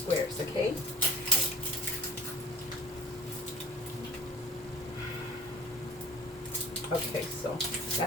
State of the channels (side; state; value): both; normal; correlation 0.47